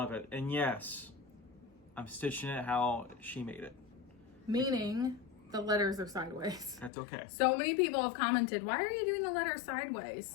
it. And yes, I'm stitching it how she made it. Meaning the letters are sideways. That's okay. So many people have commented, why are you doing the letters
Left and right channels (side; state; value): right; drops out; at 6.9 s